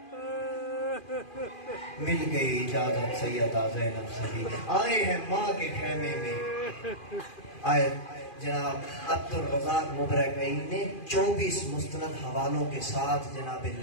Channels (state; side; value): late; right; 2.4 ms